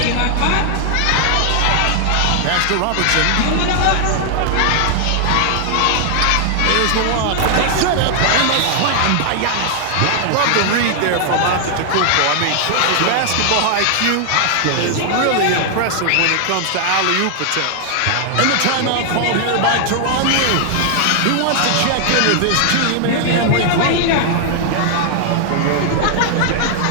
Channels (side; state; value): both; different; correlation 0.00